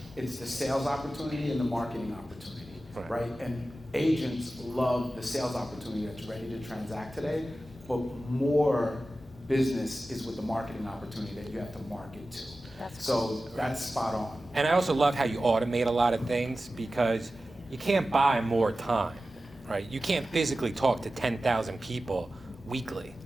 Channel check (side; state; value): both; normal; correlation 0.94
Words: It's the sales opportunity and the marketing opportunity, right? And agents love the sales opportunity that's ready to transact today, but more business is with the marketing opportunity that you have to market to. So that's spot on. And I also love how you automate a lot of things because you can't buy more time, right? You can't physically talk to 10,000 people weekly.